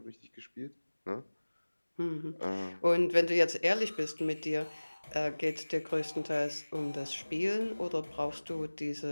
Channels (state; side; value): inverted; both; correlation -1.00